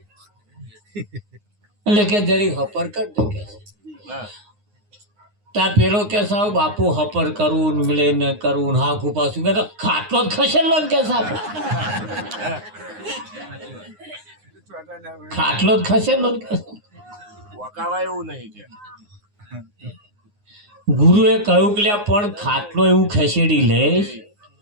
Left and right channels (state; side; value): late; left; 9.7 ms